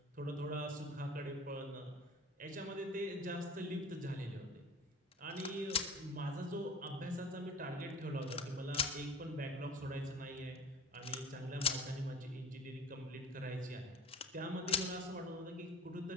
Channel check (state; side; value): normal; both; correlation 0.41